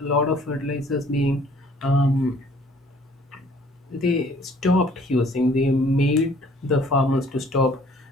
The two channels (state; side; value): normal; both; correlation 0.57